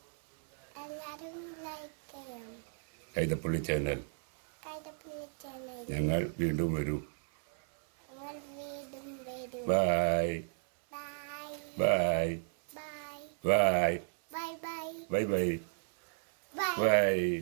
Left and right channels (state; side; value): silent; left; 55 dB below the other